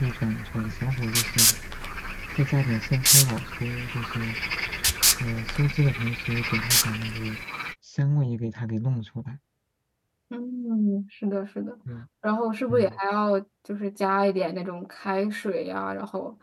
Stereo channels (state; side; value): identical; both; correlation 1.00